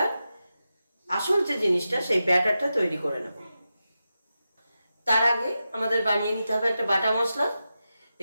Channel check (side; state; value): both; inverted; correlation -0.91